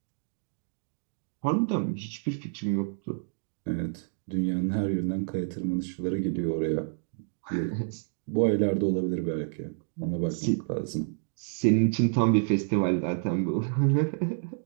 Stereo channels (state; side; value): silent; left; digital silence